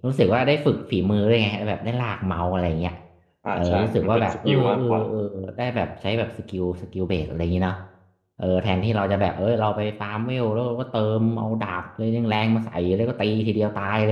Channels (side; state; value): both; identical; correlation 1.00